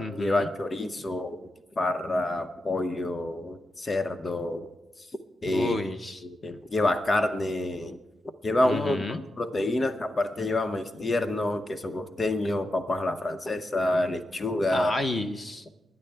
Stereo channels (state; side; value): normal; both; correlation 0.88